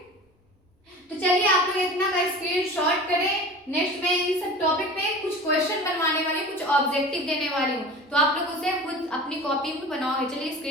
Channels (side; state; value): both; normal; correlation 0.37